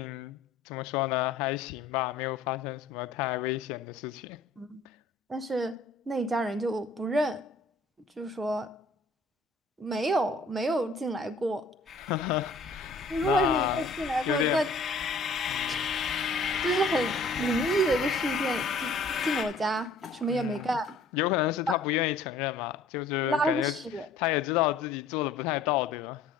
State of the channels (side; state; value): right; quieter; 3.4 dB